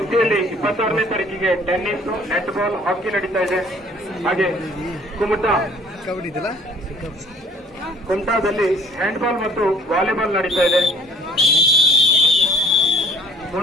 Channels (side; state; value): both; normal; correlation 0.55